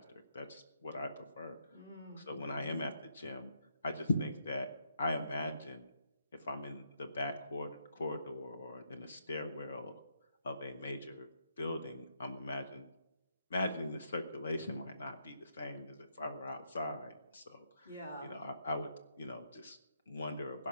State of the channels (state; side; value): inverted; both; correlation -0.77